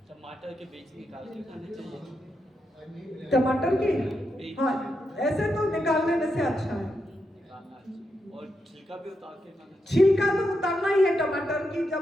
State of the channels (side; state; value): both; normal; correlation 0.84